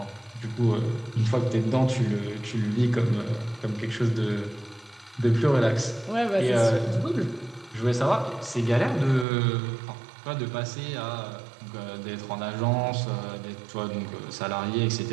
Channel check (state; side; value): drops out; left; at 9.2 s